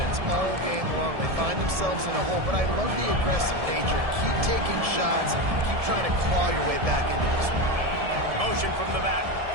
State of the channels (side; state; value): left; late; 1.7 ms